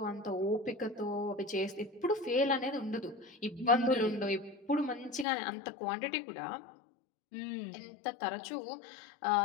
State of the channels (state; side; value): drops out; right; at 5.2 s